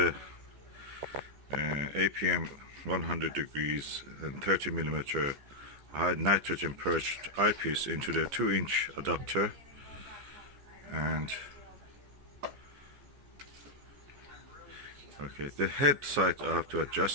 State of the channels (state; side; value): late; left; 14 ms